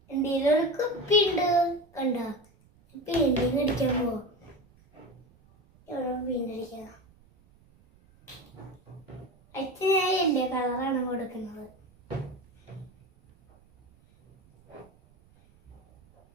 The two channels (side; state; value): right; noise; rumble, 30 dB below the sound